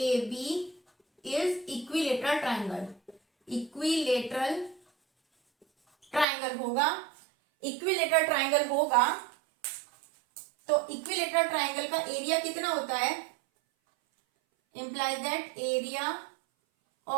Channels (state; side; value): drops out; left; at 6.2 s